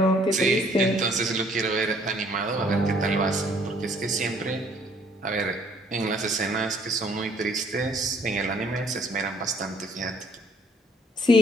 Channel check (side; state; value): both; normal; correlation 0.61